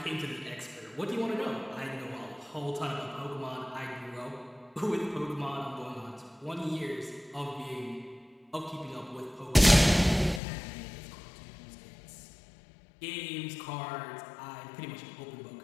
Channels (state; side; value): drops out; right; at 10.4 s